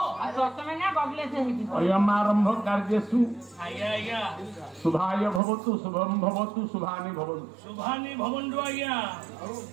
अयमारंभ कार्यसु शुभाय भवतु शुभम भवतु शुभानि भवन्तु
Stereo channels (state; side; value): drops out; left; at 5.4 s